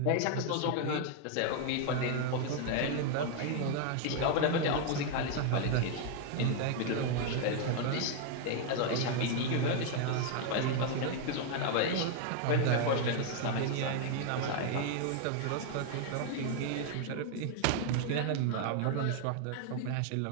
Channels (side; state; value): both; different; correlation 0.00